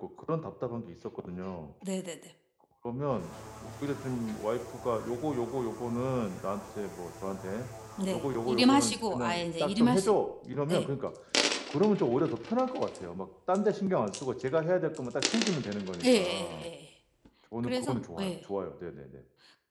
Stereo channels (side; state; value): both; identical; correlation 1.00